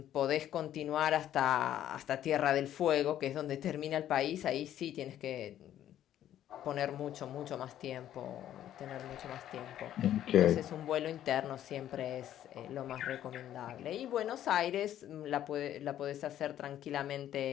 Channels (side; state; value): right; quieter; 11.6 dB